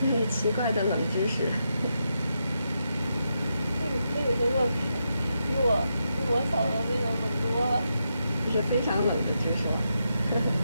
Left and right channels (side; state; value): both; inverted; correlation -0.84